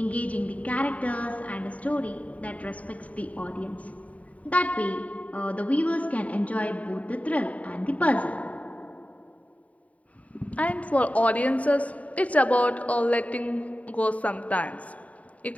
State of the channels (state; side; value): late; right; 0.068 ms